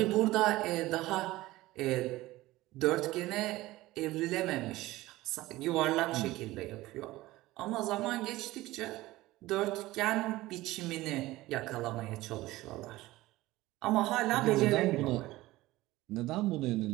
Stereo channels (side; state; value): left; quieter; 18.0 dB